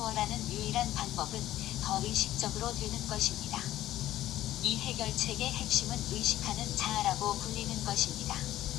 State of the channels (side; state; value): right; quieter; 13.8 dB